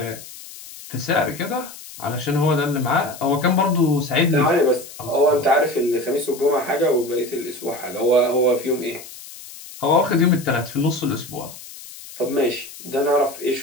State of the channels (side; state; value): left; noise; hiss, 16 dB below the sound